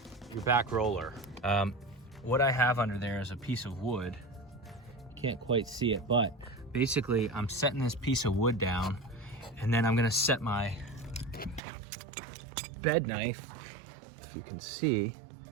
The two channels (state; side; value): drops out; left; at 11.6 s